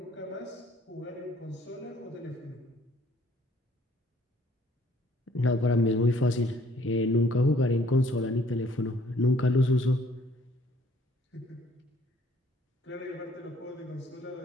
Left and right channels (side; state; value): both; normal; correlation 0.61